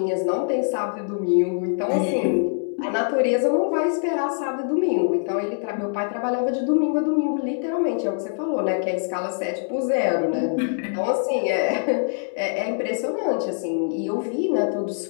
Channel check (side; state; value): right; silent; digital silence